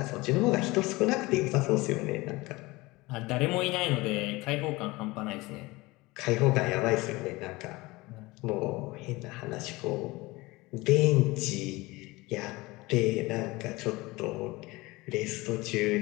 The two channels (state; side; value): quieter; right; 21.8 dB